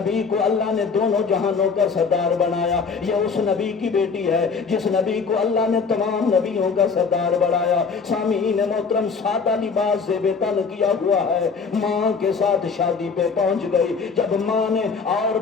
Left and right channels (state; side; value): quieter; right; 5.2 dB